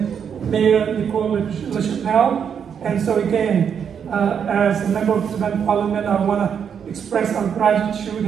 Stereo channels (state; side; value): quieter; left; 7.6 dB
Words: Mayor Nicole LaChapelle. And so again, as a member of the Tibetan Parliament, I want to express our gratitude